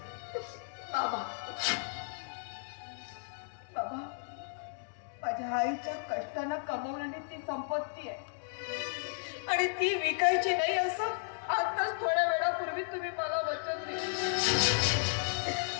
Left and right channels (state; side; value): silent; right; digital silence